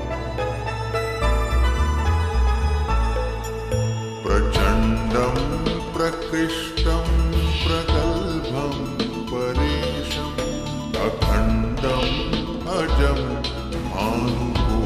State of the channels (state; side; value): identical; both; correlation 1.00